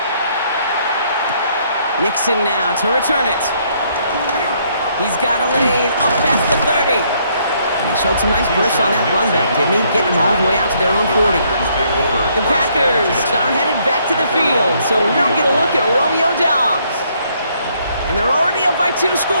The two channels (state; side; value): inverted; both; correlation -0.69